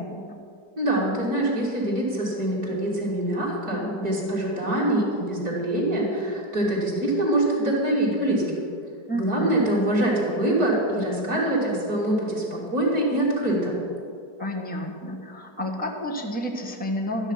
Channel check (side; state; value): left; late; 4.6 ms